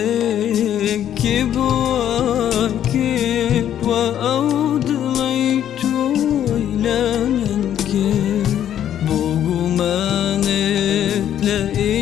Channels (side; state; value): right; quieter; 10.5 dB